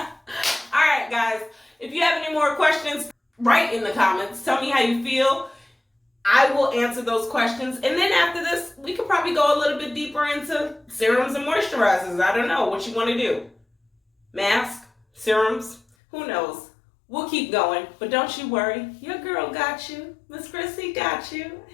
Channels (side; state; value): right; drops out; at 15.8 s